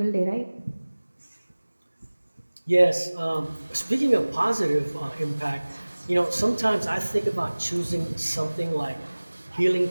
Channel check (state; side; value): inverted; both; correlation -1.00